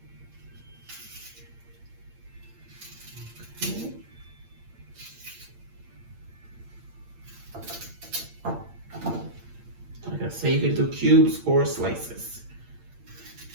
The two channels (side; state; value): left; late; 8.7 ms